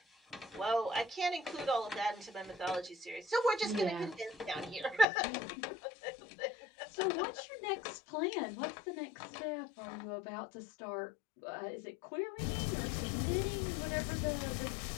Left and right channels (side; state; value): right; drops out; at 5.1 s